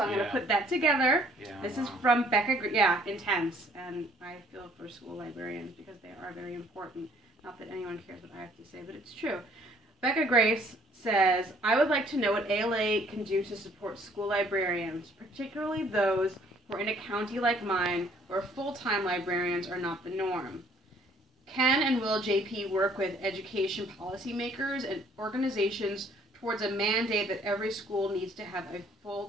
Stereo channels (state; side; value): normal; both; correlation 0.60